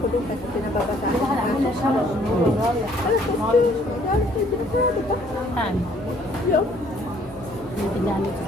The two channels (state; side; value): noise; left; hum, 21 dB below the sound